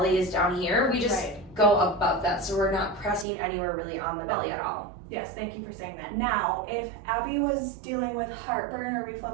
is down here, we just Right. go above that. So we're not pressing anywhere really on the belly at all. Yes, thank you for saying that. Now, if Abby was dealing with heartburn or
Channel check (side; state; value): left; drops out; at 3.2 s